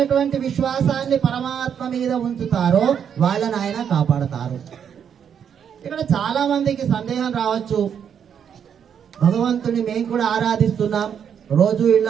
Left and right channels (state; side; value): quieter; left; 8.1 dB